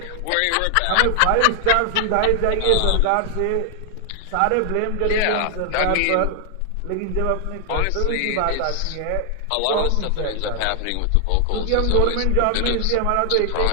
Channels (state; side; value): different; both; correlation 0.00